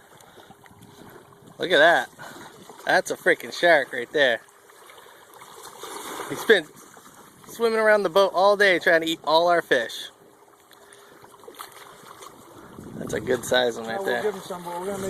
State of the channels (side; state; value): both; identical; correlation 1.00